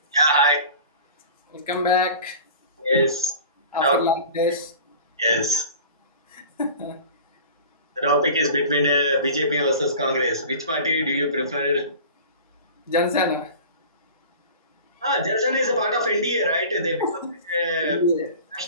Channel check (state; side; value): inverted; both; correlation -0.40